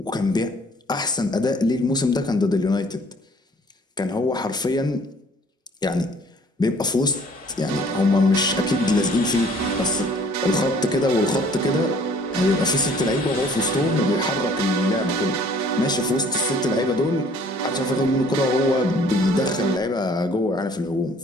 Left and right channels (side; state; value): both; normal; correlation 0.56